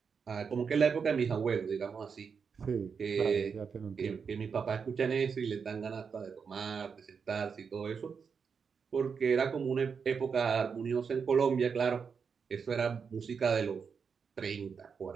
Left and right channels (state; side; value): quieter; left; 6.0 dB